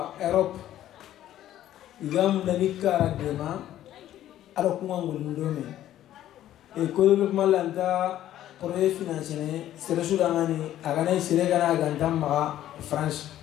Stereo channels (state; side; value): quieter; right; 12.5 dB